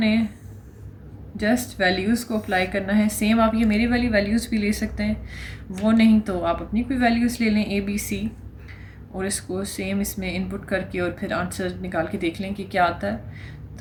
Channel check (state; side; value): identical; both; correlation 1.00